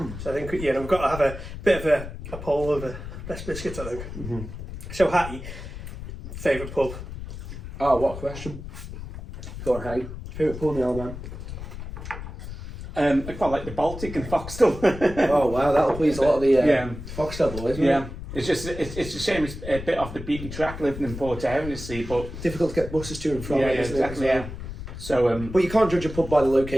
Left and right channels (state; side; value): noise; left; rumble, 10 dB below the sound